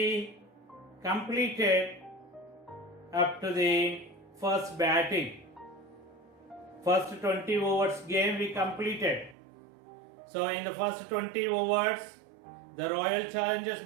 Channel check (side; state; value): left; drops out; at 9.3 s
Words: completed up to the first batting. First 20 overs game we completed. So in the first 20 overs, the Royal Challengers